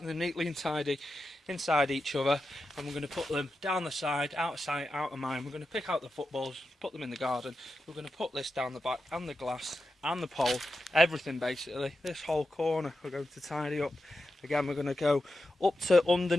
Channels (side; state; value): both; normal; correlation 0.90